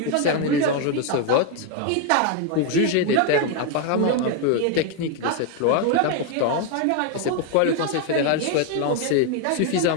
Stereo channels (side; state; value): both; different; correlation 0.01